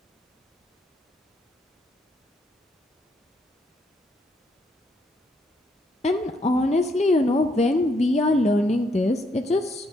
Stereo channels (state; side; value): normal; both; correlation 0.73